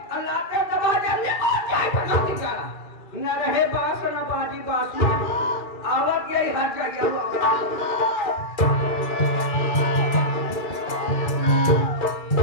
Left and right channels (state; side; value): late; right; 2.3 ms